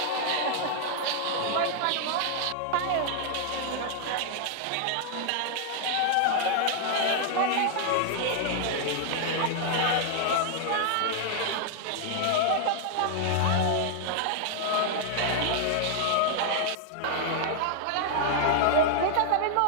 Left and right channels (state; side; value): different; both; correlation -0.01